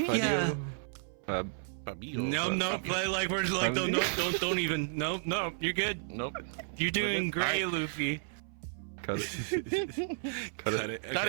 Fab. Fabio. No, like we're like, don't even. No, you're good. Nope. You're doing good. great, Luffy. Cut it. Cut it. Okay. Got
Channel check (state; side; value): silent; left; 56 dB below the other